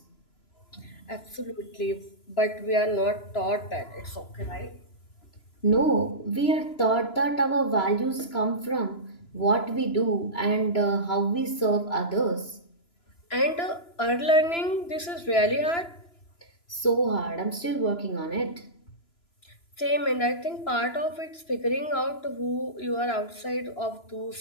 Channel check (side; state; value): right; late; 2.9 ms